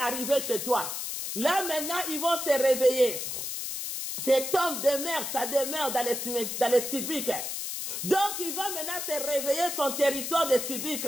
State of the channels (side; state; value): left; noise; hiss, 4 dB below the sound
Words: chez toi. Là maintenant, ils vont se réveiller. Cet homme demeure, ça demeure dans les civiques. Donc, il va maintenant se réveiller son territoire de civiques.